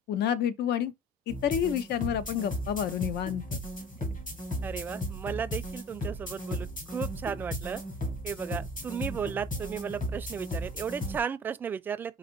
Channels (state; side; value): normal; both; correlation 0.42